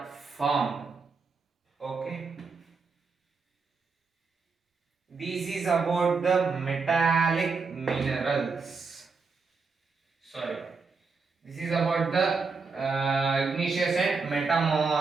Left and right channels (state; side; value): quieter; left; 4.6 dB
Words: formed. Okay. This is about the metallic minerals. Sorry. This is about the igneous and